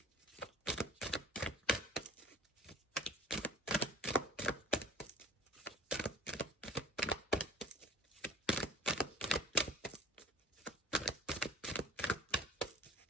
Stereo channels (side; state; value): both; normal; correlation 0.44